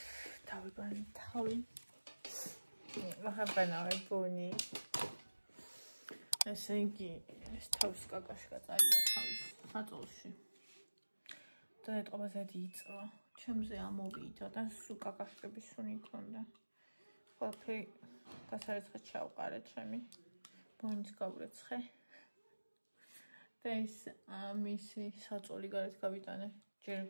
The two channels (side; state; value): both; inverted; correlation -1.00